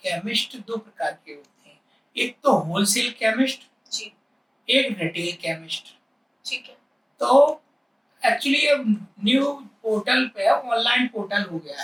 केमिस्ट 2 प्रकार के होते हैं। एक तो होलसेल केमिस्ट, एक रिटेल केमिस्ट। ठीक है। तो एक्चुअली अब न्यू पोर्टल पे ऑनलाइन पोर्टल हो गया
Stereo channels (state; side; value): identical; both; correlation 1.00